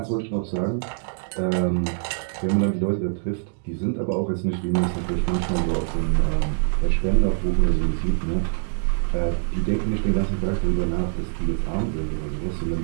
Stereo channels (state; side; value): silent; left; digital silence